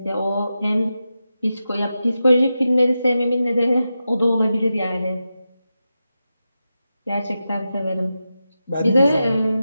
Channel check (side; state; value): both; inverted; correlation -0.90